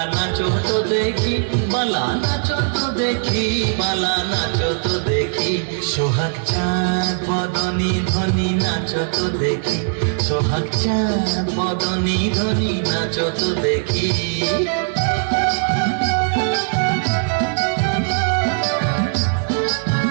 নাচো তো দেখি, বালা নাচো তো দেখি, বালা নাচো তো দেখি, সোহাগ চাঁদ বদনী ধ্বনি নাচো তো দেখি, সোহাগ চাঁদ বদনী ধ্বনি নাচো তো দেখি।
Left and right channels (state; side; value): silent; left; digital silence